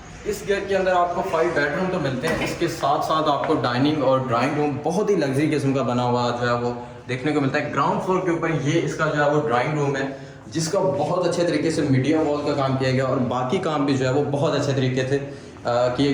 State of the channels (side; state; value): both; identical; correlation 1.00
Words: इस घर के अंदर आपको 5 बेडरूम तो मिलते हैं, इसके साथ साथ आपको डाइनिंग और ड्राइंग रूम बहुत ही लग्जरी किस्म का बना हुआ जो है वो देखने को मिलता है। ग्राउंड फ्लोर के ऊपर ये इसका जो है वो ड्राइंग रूम है जिसका बहुत अच्छे तरीके से मीडिया वॉल का काम किया गया और बाकी काम भी जो है वो बहुत अच्छे तरीके से किए